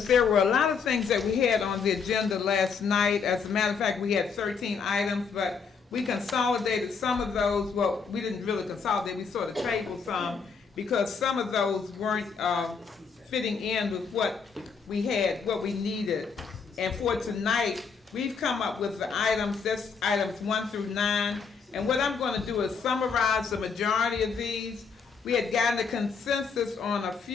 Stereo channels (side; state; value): right; quieter; 5.6 dB